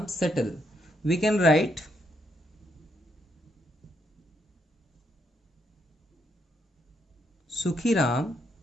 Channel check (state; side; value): normal; both; correlation 0.76